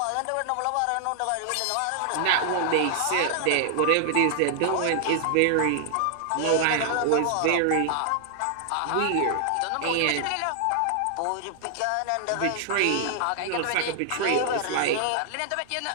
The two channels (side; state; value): both; different; correlation 0.00